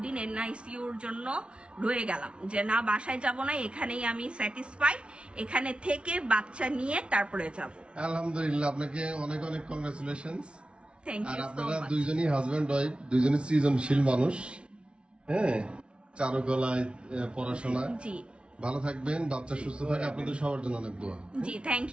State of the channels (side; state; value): left; late; 0.058 ms